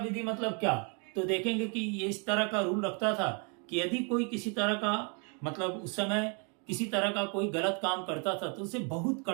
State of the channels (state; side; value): quieter; left; 36.5 dB